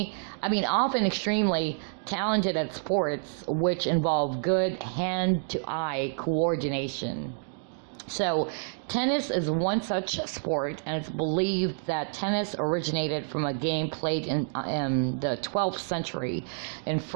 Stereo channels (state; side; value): silent; left; digital silence